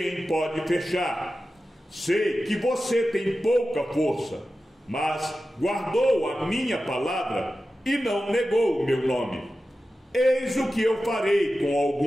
pode fechar. Sei que você tem pouca força, mas guardou a minha palavra e não negou o meu nome. Eis o que eu farei com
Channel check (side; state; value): both; normal; correlation 0.93